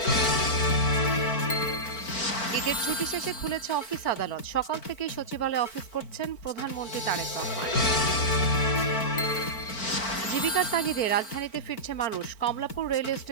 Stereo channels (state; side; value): late; right; 4.4 ms